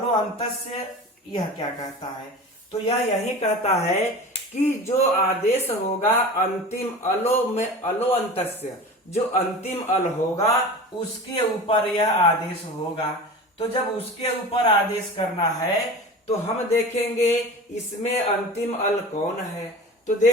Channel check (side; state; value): both; normal; correlation 0.34